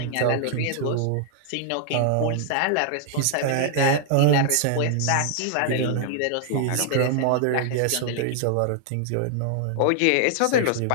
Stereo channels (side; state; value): both; different; correlation 0.00